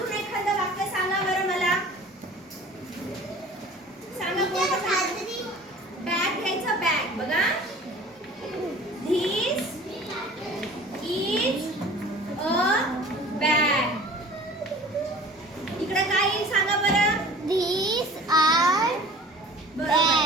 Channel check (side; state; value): both; normal; correlation 0.45